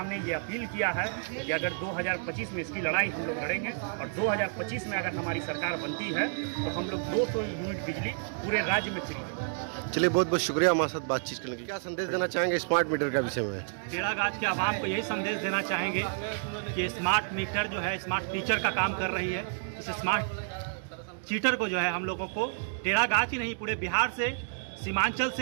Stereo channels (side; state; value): left; silent; digital silence